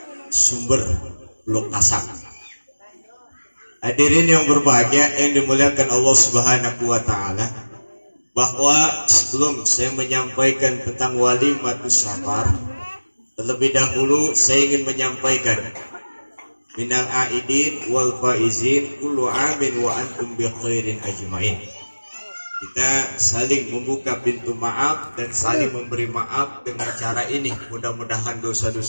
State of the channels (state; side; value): inverted; both; correlation -1.00